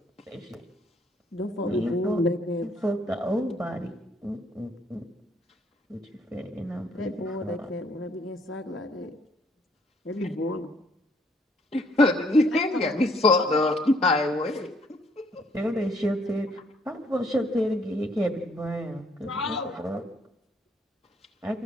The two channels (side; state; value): both; normal; correlation 0.65